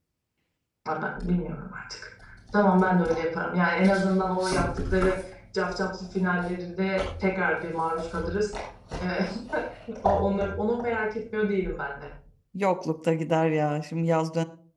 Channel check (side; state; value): both; identical; correlation 1.00